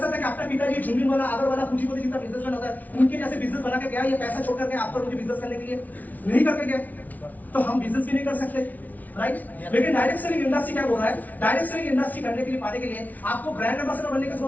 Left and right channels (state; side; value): late; right; 0.076 ms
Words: सकते हैं कि अपना पिताजी झुंझुन वाला, आगर वाला, पूंजीपति जितना बिजनेसमैन होता है, उनके जैसे बिजनेस बना के गया, ये पैसा छोड़ करके आपको मुझे बिजनेस करने के लिए नहीं करके गया, तो हम बिजनेस भी नहीं कर सकते, राइट? लेकिन डायरेक्ट सेलिंग इंडस्ट्री क्या बोल रहा है, डायरेक्ट सेलिंग इंडस्ट्री करने के लिए, पाने के लिए आपको ब्रांड एम्बेसडर बनने की